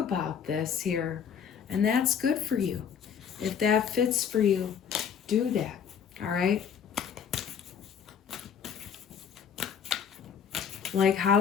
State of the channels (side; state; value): right; quieter; 7.5 dB